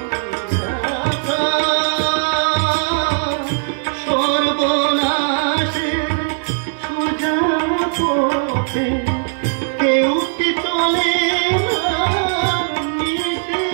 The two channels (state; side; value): silent; left; 67 dB below the other